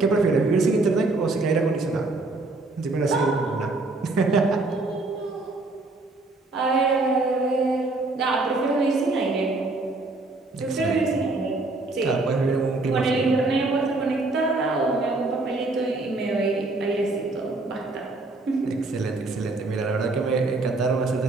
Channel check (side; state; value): left; quieter; 3.2 dB